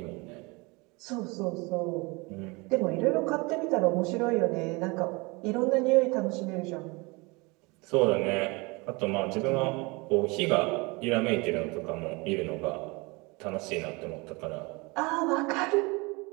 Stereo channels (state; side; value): quieter; left; 26.5 dB